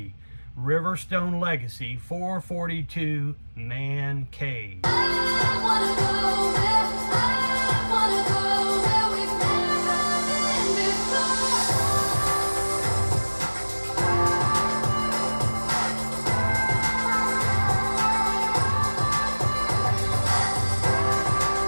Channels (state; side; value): inverted; both; correlation -1.00